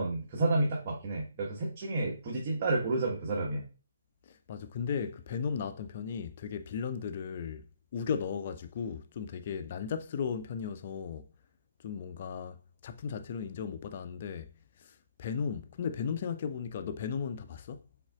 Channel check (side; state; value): both; inverted; correlation -0.67